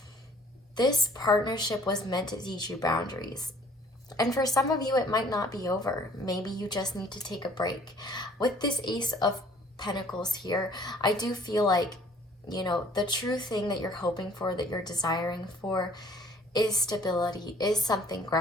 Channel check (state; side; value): normal; both; correlation 0.56